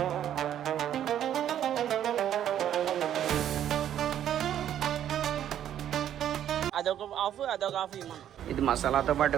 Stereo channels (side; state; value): left; quieter; 10.6 dB